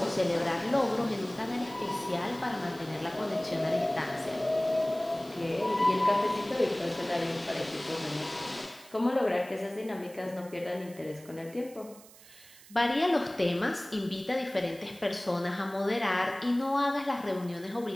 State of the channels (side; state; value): right; noise; hiss, 21 dB below the sound